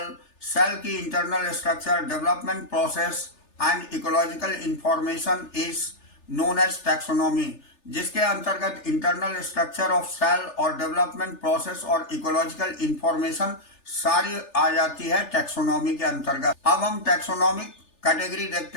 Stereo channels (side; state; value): right; late; 3.4 ms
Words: की internal structure, development process and ecological information is known as taxonomy, जिसके अंतर्गत इंटरनल स्ट्रक्चर ऑफ सेल और डेवलपमेंट प्रोसेस और इकोलॉजिकल इंफॉर्मेशन सारी आ जाती है टैक्सोनॉमी के अंतर्गत। अब हम टैक्सोनॉमिक कैटेगरी